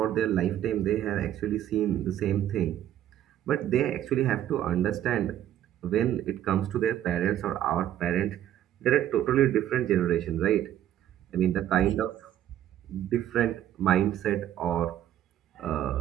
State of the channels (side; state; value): left; quieter; 11.7 dB